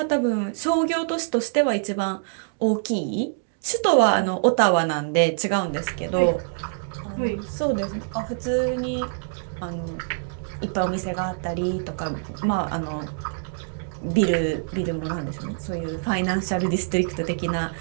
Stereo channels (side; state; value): left; silent; digital silence